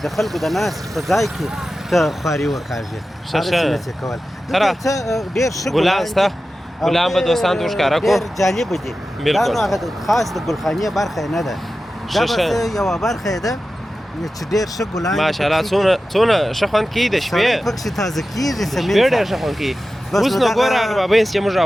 د خلکو د ناستې په ځای کې ته خواري وکاږې هغسې نه شې کولی. دلته څه ډېر ښه ګلان شته ګلان به دوستانو ته ښکاره کړو ډېر جالبه دي. دا نو هغه خاص د ګلخانې برخه نه ده دا بس یوه برخه یې ده چې ډېر ښه ګلان ماشاءالله څونه ښه خوند کوي د شپې پکښې تازه کېږي سمین شپې ډېر ښه خوند کوي. اوس نو ګوره هغه بابیس چې موږ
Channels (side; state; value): both; normal; correlation 0.94